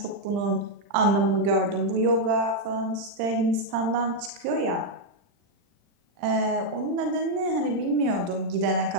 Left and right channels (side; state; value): left; late; 40 ms